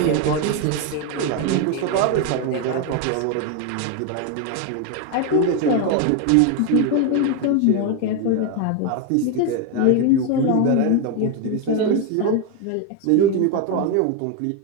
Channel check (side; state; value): both; different; correlation 0.02